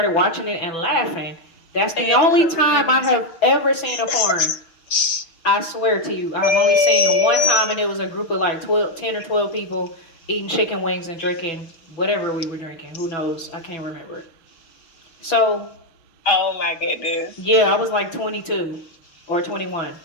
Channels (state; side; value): late; right; 6.3 ms